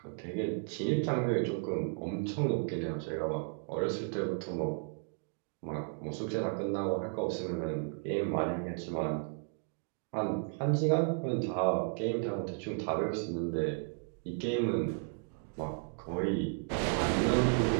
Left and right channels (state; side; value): silent; left; 55 dB below the other